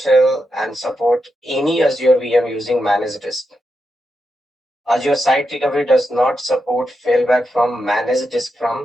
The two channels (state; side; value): normal; both; correlation 0.86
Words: and support any Azure VM using managed disk. Azure Site Recovery does not support failback from managed disk